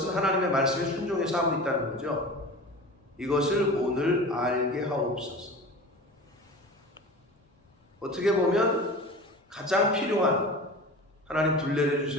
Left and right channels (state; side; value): normal; both; correlation 0.35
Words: 하나님의 말씀에 순종해서 하고 있다는 거죠. 이것을 오늘 알게 하옵소서. 어떻게 보면 가장 필요한, 하나님 불